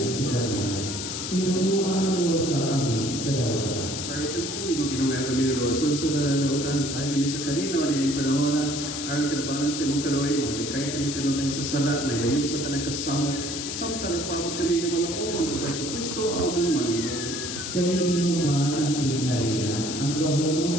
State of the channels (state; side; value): noise; left; hiss, 5 dB below the sound